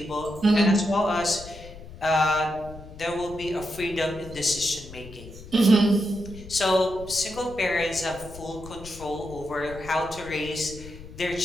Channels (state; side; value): noise; left; rumble, 15 dB below the sound